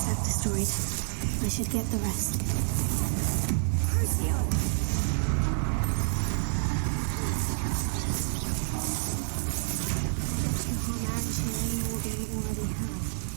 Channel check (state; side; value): silent; left; 57 dB below the other